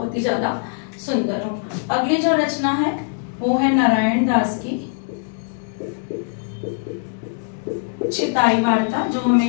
ही ज्यादा सुंदर हूँ। अगली जो रचना है वो है नारायण दास की चिताई वार्ता, जो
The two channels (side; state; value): right; silent; digital silence